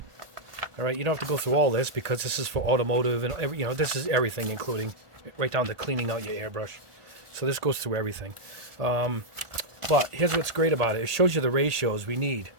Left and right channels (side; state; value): left; late; 1.4 ms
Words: All right, you don't have to go through all this because this is for automotive and this is everything, including right down to cleaning out your airbrush. So this goes through everything. But here's what's great about it. It shows you the ratios we need.